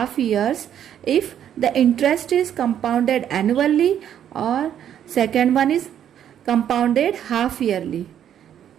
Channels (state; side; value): quieter; left; 9.9 dB